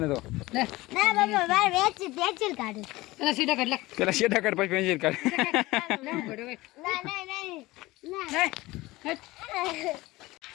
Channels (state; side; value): quieter; right; 19.8 dB